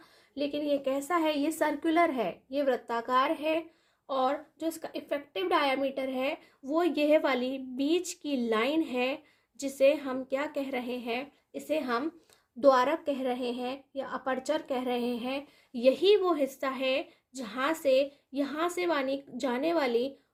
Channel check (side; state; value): both; identical; correlation 1.00